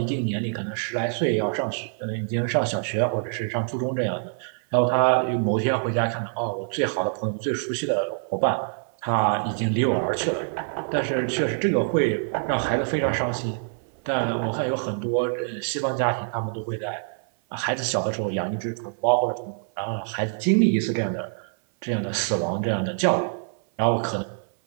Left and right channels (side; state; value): left; silent; 56 dB below the other